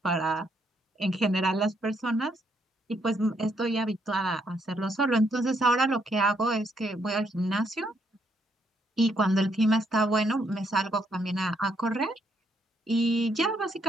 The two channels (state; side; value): normal; both; correlation 0.73